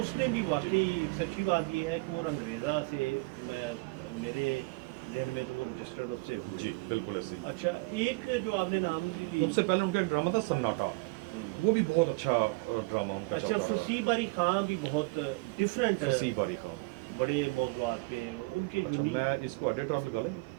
भी वाकई सच्ची बात ये है कि वो अंग्रेज़ा से मेरे जहन में तो वो रजिस्टर्ड उससे हो। जी बिल्कुल ऐसे ही। अच्छा, एक जो आपने नाम ली, उनसे पहले उनका एक ड्रामा था सन्नाटा, वो भी बहुत अच्छा ड्रामा उनका अच्छा, चलता रहा। फसी बारी खां भी बहुत डिफरेंट है, फसी बारी खान। बड़े मौज़ूआत पे उनके जो अच्छा, भी- मैं इसको एडिटर आप लगा लेंगे।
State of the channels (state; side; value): quieter; left; 27.0 dB